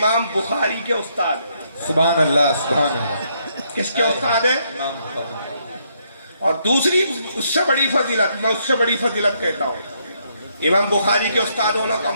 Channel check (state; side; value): inverted; both; correlation -0.74